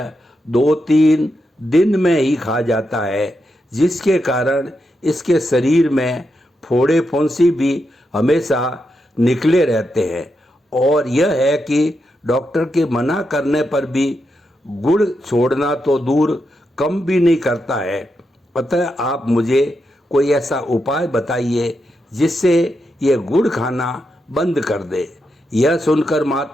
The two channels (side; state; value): both; normal; correlation 0.85